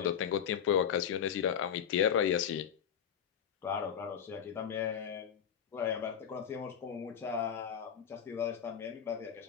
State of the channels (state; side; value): quieter; right; 8.4 dB